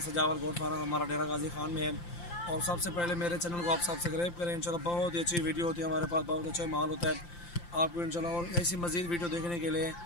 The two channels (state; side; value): late; right; 5.8 ms